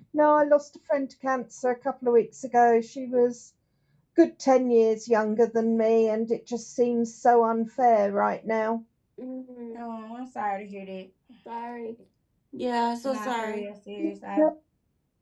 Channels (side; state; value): both; identical; correlation 1.00